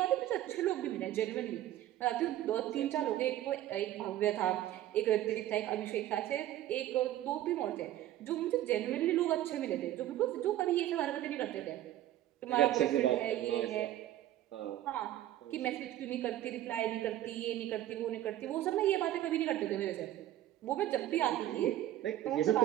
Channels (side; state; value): left; quieter; 13.4 dB